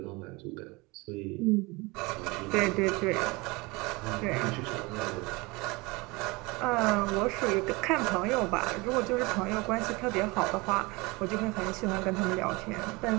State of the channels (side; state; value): left; quieter; 24.8 dB